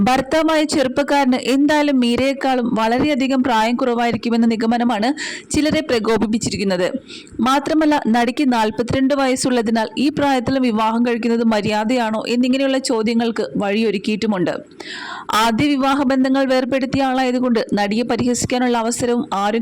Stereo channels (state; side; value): identical; both; correlation 1.00